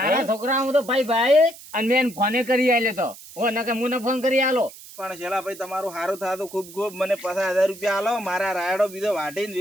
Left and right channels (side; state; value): right; noise; hiss, 18 dB below the sound